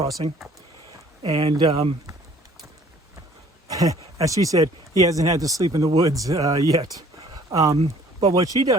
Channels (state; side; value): normal; both; correlation 0.55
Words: And as she said, he hasn't had to sleep in the woods yet. But what she